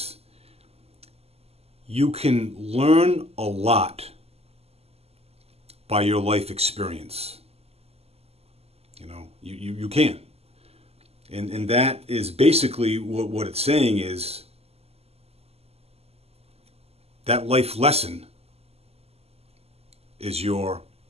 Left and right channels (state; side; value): late; left; 0.29 ms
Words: you can learn a lot by your life experience. You can. And that is basically what it's saying is that life lesson is your